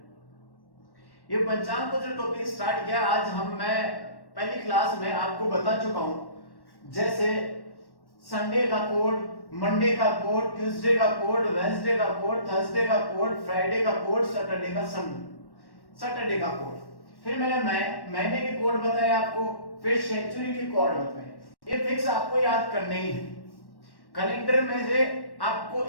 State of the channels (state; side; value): late; right; 1.1 ms